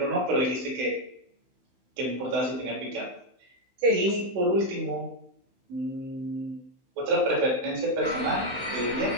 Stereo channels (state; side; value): late; left; 16 ms